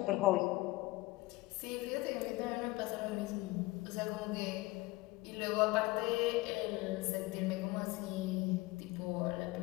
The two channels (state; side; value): quieter; right; 20.7 dB